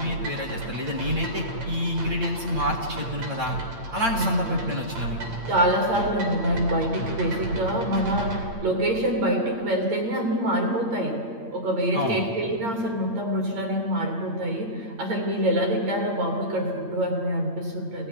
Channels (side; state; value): left; late; 8.7 ms